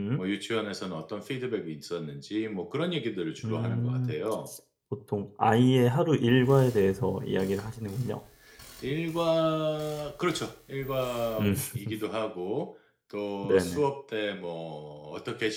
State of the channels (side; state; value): both; identical; correlation 1.00